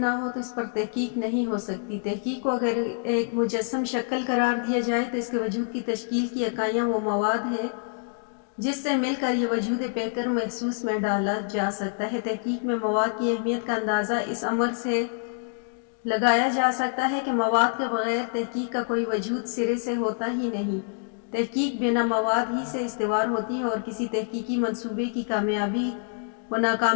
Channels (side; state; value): right; silent; 61 dB below the other